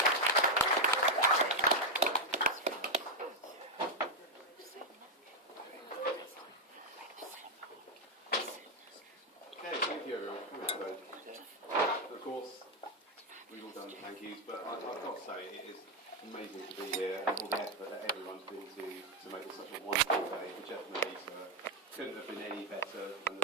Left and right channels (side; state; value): both; normal; correlation 0.02